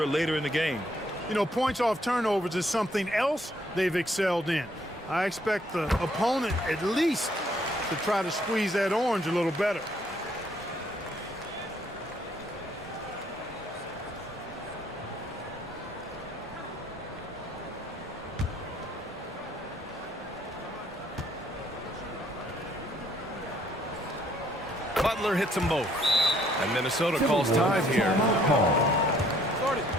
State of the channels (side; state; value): both; normal; correlation 0.66